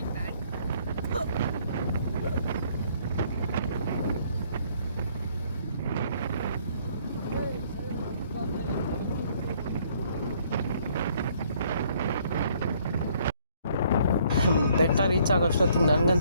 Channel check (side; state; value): both; inverted; correlation -0.63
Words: ಬೆಟ್ಟ ರೀಚ್ ಆಗೋಷ್ಟೊತ್ತಿಗೆ